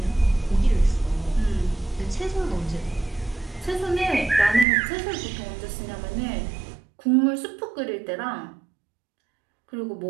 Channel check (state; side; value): drops out; left; at 4.7 s